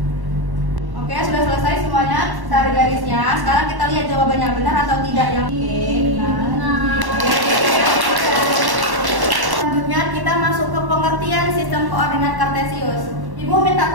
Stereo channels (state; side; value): late; left; 1.1 ms